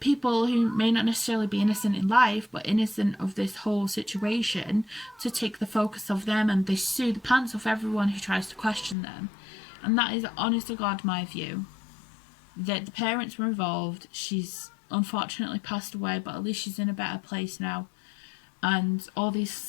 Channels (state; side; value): drops out; right; at 9.0 s